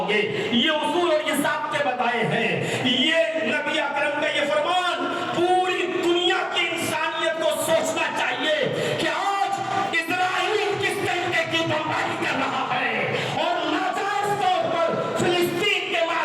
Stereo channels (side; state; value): both; identical; correlation 1.00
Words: گے. یہ اصول اور یہ ضابطے بتائے ہیں. یہ نبی اکرم کا یہ فرمان پوری دنیا کی انسانیت کو سوچنا چاہیے کہ آج اسرائیل کس طریقے کی بمباری کر رہا ہے اور ناجائز طور پر فلسطین کے